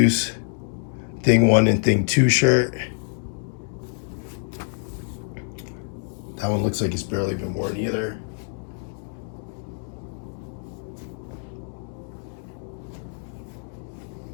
Thing 1 and Thing 2 shirt. That one looks like it's barely been worn either.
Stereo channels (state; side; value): silent; right; 60 dB below the other